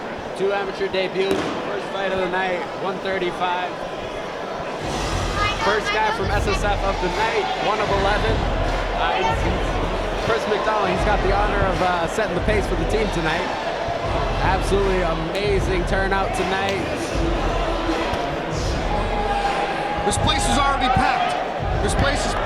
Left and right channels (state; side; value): identical; both; correlation 1.00